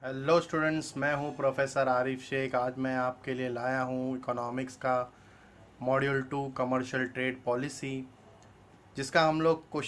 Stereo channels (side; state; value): both; identical; correlation 1.00